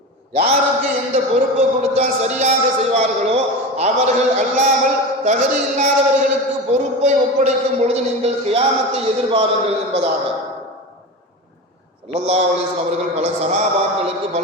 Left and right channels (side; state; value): both; normal; correlation 0.26